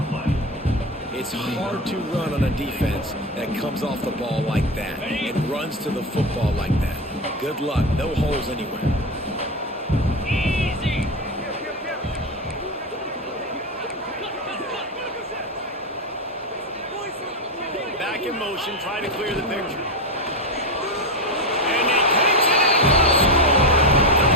It's hard to run on a defense that comes off the ball like that and runs to the football like that. Good luck. No holes anywhere. Back in motion, try to clear the picture. And he takes it and score.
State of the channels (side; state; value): both; normal; correlation 0.16